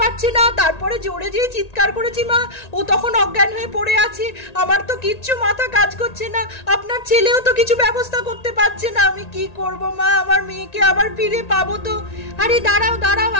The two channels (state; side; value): late; right; 1.8 ms